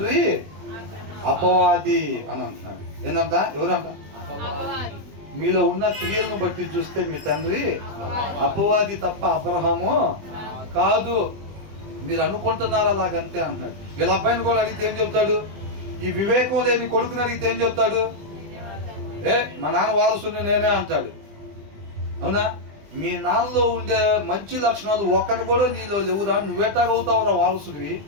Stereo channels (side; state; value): left; late; 20 ms